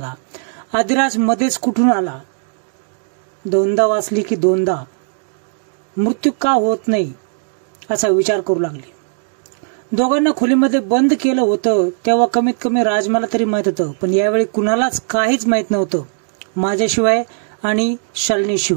आदिराज मध्येच कुठून आला। दोनदा वाचली की दोनदा मृत्यू का होत नाही असा विचार करू लागली। दोघांना खोलीमध्ये बंद केलं होतं तेव्हा कमीत कमी राजमाला तरी माहित होतं, पण यावेळी कुणालाच काहीच माहित नव्हतं माझ्याशिवाय आणि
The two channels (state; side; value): silent; left; 62 dB below the other